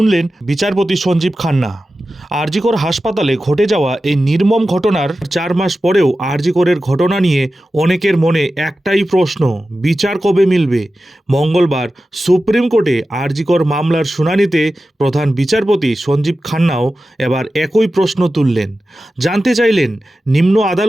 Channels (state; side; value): normal; both; correlation 0.93